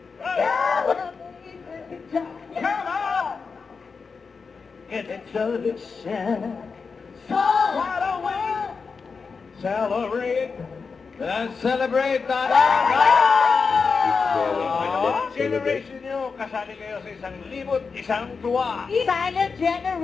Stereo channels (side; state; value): right; quieter; 5.0 dB